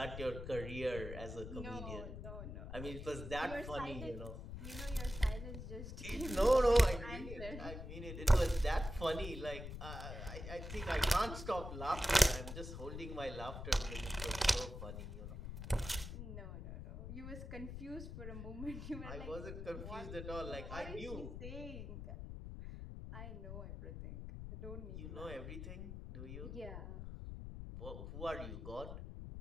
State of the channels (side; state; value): left; noise; rumble, 8 dB below the sound